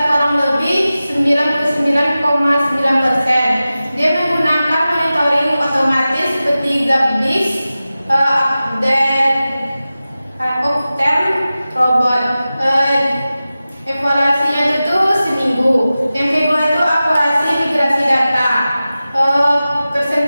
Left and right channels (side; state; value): both; inverted; correlation -0.95